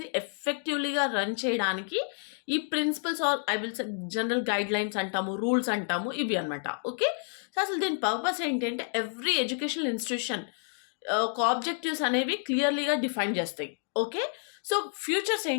ఎఫెక్టివ్లీగా రన్ చేయడానికి ఈ principles are I will say general guidelines అంటాము, రూల్స్ అంటాము, ఇవి అనమాట. ఓకే, సో అసలు దీని పర్పస్ ఏంటంటే ఎవ్రీ ఎడ్యుకేషనల్ ఇన్స్టిట్యూషన్ ఒక ఆబ్జెక్టివ్స్ అనేవి క్లియర్లీగా డిఫైన్ చేస్తాయి. ఓకే, సో ఫ్యూచర్స్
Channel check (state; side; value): silent; right; 58 dB below the other